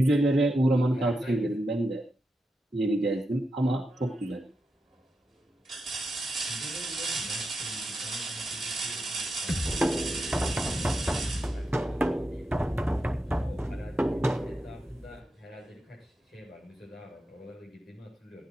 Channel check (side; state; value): both; normal; correlation 0.87